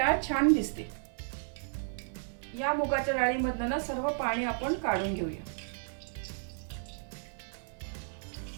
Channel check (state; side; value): silent; left; 56 dB below the other